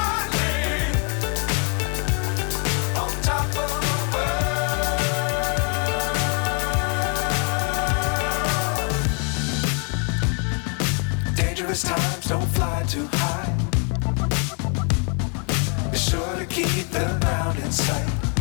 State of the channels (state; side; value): quieter; right; 38.8 dB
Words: Times don't fly too high. Be sure to keep the ground in sight.